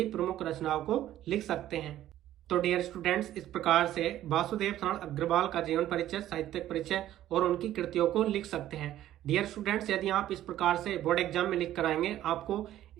प्रमुख रचनाओं को लिख सकते हैं। तो डियर स्टूडेंट्स, इस प्रकार से वासुदेव शरण अग्रवाल का जीवन परिचय, साहित्यिक परिचय और उनकी कृतियों को लिख सकते हैं। डियर स्टूडेंट्स, यदि आप इस प्रकार से बोर्ड एग्जाम में लिख कर आएंगे, आपको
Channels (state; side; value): quieter; left; 13.0 dB